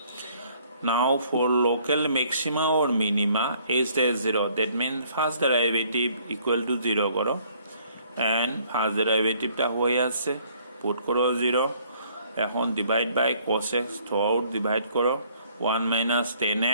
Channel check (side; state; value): both; inverted; correlation -0.62